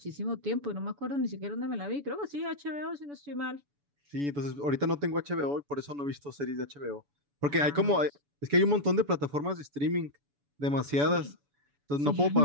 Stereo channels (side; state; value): left; late; 7.0 ms